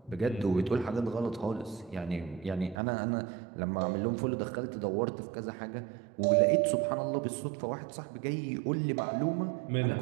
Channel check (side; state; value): left; drops out; at 2.8 s